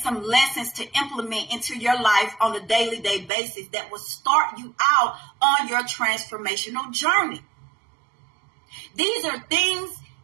some lessons to implement into your life on a daily basis that will start you out on your transformational journey. These are things,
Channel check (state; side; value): drops out; left; at 3.3 s